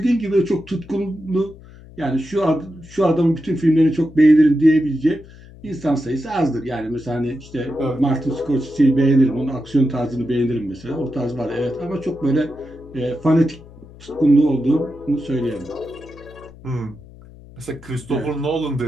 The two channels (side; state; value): left; noise; hum, 20 dB below the sound